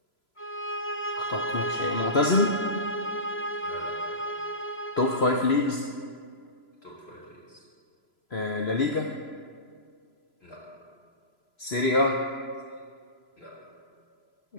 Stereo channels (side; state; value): right; late; 3.0 ms